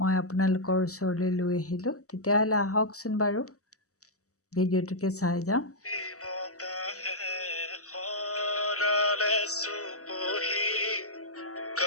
আপোনালোকৰ ওচৰলৈ লৈ আহিলোঁ, তেতিয়াহ'লে আহকচোন বাৰু ভিডিঅ'টোকে চাই যাওঁ।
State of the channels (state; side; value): late; right; 0.66 ms